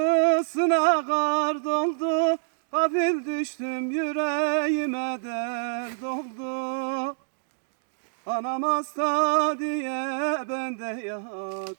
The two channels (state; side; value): silent; left; digital silence